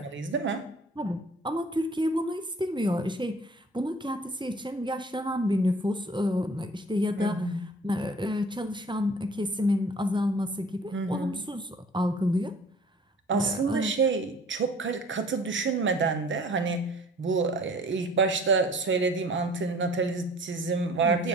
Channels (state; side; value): normal; both; correlation 0.50